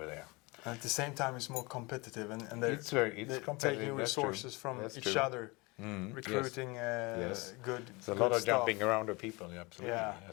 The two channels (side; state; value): right; quieter; 25.5 dB